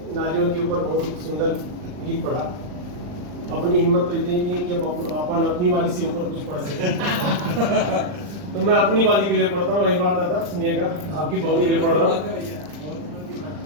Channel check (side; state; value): left; late; 39 ms